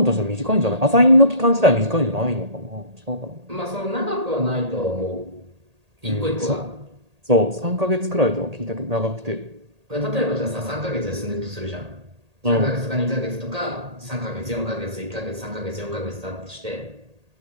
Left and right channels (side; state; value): left; late; 1.8 ms